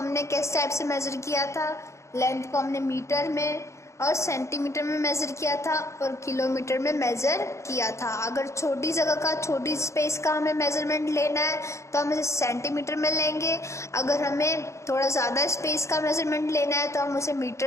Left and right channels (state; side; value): late; right; 0.14 ms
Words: किस type से मेजर किया था? लेंथ को हमने मीटर में और सेंटीमीटर में मेजर किया था और किलोमीटर में मेजर किया था। अगर छोटी जगह का, छोटी स्पेस का हमें मेजरमेंट लेना है तो हम इसे सेंटीमीटर में लेंगे। अगर हमें थोड़ा ज़्यादा स्पेस का मेजरमेंट लेना है तो हम उसे